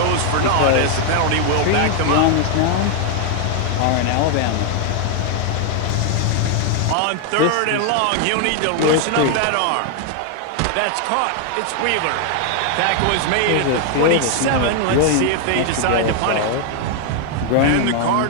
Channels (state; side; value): different; both; correlation 0.00